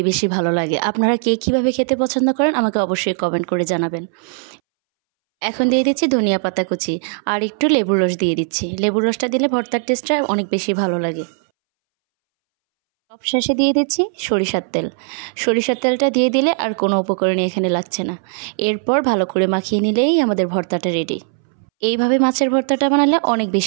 বেশি ভালো লাগে। আপনারা কে কীভাবে খেতে পছন্দ করেন আমাকে অবশ্যই কমেন্ট করে জানাবেন। এখন দিয়ে দিচ্ছি ধনিয়া পাতা কুচি আর একটু লেবুর রস দিয়ে দিচ্ছি। লেবুর রসটা দিলে ভর্তার টেস্টটা অনেক বেশি ভালো লাগে। সবশেষে দিয়ে দিচ্ছি সরিষার তেল। সরিষার তেলটা দিয়ে দিলে আর কোনো উপকরণই এখানে লাগছে না। এরপর ভালো করে মাখিয়ে নিলেই আমাদের ভর্তাটা রেডি। এইভাবে মাছের ভর্তাটা বানালে অনেক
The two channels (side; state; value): left; silent; 65 dB below the other